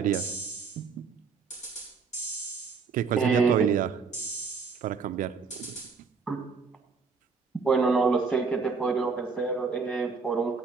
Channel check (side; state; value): left; quieter; 5.1 dB